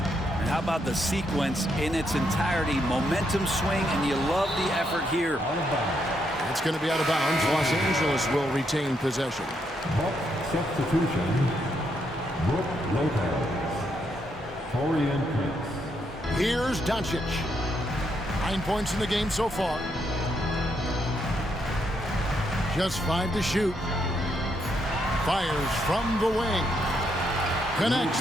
how about the sequence in its entirety? Momentum swing, and you love the effort here. It's going to be out of bounds. Los Angeles will retain possession. Substitution. Brook Lopez. Torian Prince. Here's Doncic. 9 points in the game so far. Just 5 to shoot. Fires from the wing.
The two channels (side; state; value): both; normal; correlation 0.77